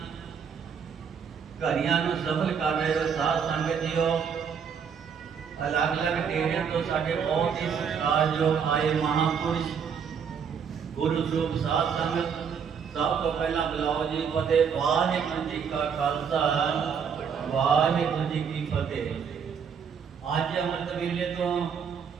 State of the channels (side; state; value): left; quieter; 6.9 dB